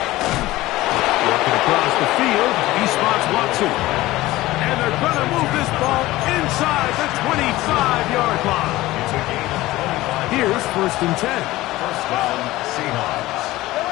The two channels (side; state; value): right; quieter; 17.7 dB